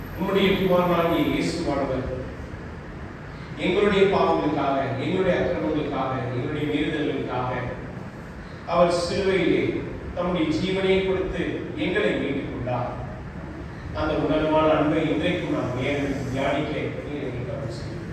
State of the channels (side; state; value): both; identical; correlation 1.00